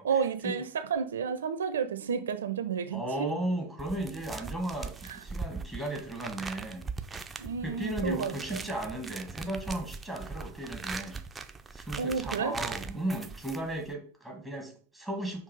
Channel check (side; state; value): left; quieter; 3.6 dB